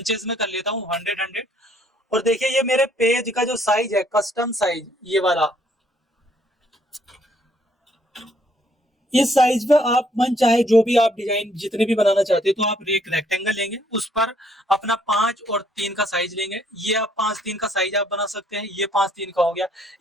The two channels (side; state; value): both; normal; correlation 0.66